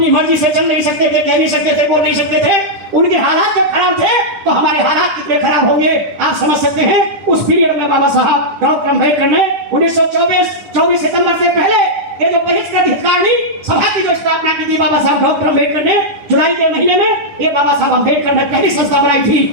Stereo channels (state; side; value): late; left; 9.8 ms